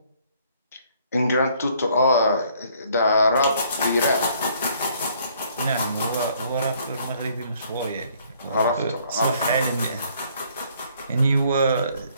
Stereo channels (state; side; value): inverted; both; correlation -0.64